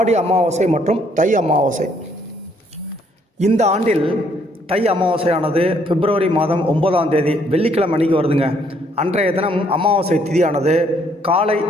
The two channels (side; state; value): both; normal; correlation 0.67